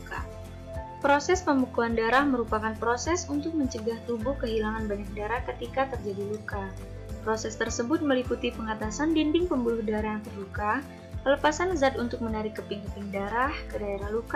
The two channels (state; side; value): identical; both; correlation 1.00